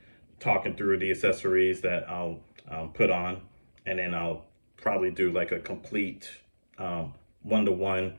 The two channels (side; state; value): both; inverted; correlation -1.00